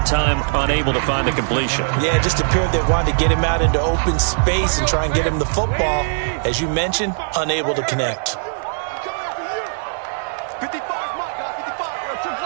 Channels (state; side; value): silent; left; digital silence